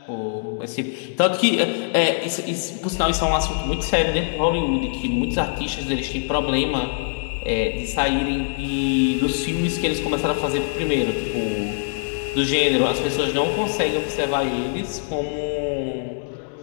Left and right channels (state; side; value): silent; right; 64 dB below the other